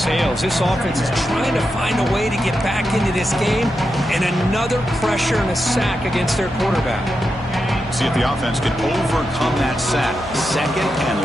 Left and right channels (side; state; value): left; noise; hum, 16 dB below the sound